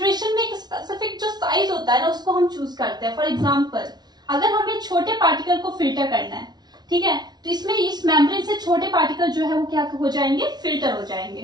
में एक स्पेसिफिक जो साइज होता है ना उसको हम चूज करते हैं। फॉर एग्जाम्पल अगर हमें छोटे पार्टिकल को फिल्टर करना है, ठीक है, तो इसमें इस मेम्ब्रेन से छोटे पार्टिकल जो है वो क्या हो जाएंगे, फिल्टर हो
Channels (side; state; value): left; late; 0.20 ms